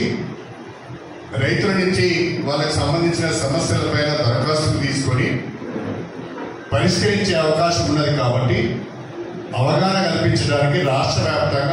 రైతుల నుంచి వాళ్ళకి సంబంధించిన సమస్యలపైన దరఖాస్తులు తీసుకొని పరిష్కరించే అవకాశం ఉన్నది. కాబట్టి అవగాహన కల్పించడానికి రాష్ట్ర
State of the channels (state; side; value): identical; both; correlation 1.00